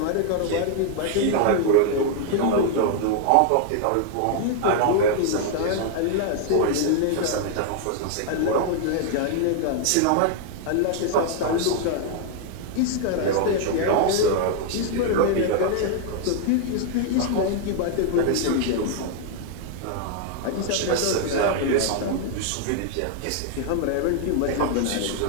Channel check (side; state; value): both; different; correlation 0.00